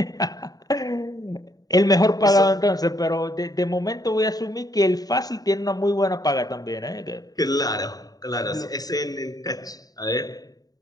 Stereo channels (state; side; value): late; right; 0.18 ms